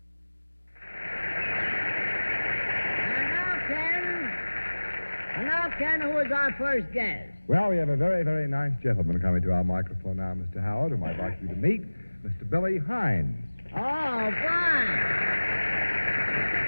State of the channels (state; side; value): inverted; both; correlation -1.00